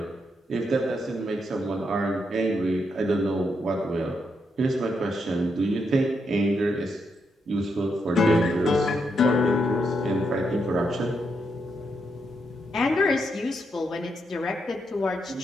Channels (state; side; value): normal; both; correlation 0.80